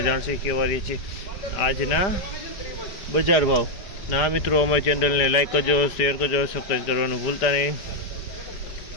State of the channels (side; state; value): right; late; 5.0 ms